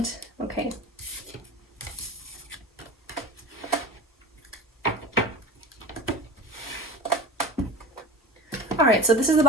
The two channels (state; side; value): normal; both; correlation 0.33